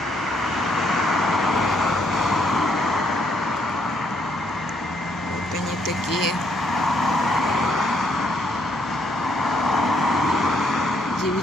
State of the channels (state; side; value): normal; both; correlation 0.72